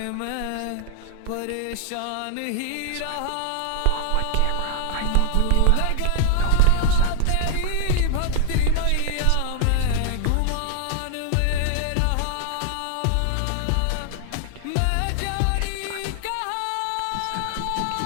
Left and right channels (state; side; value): different; both; correlation -0.01